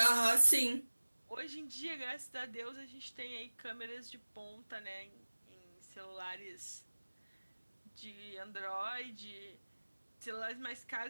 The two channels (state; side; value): inverted; both; correlation -1.00